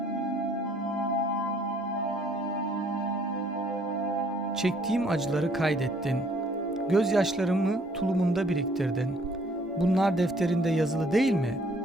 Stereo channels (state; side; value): normal; both; correlation 0.62